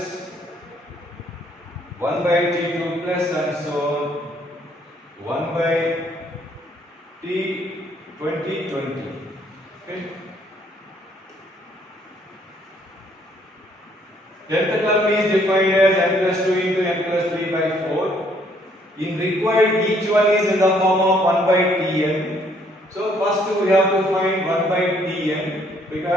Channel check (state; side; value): normal; both; correlation 0.66